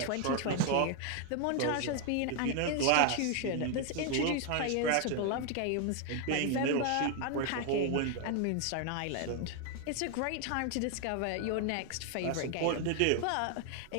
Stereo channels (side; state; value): both; different; correlation 0.01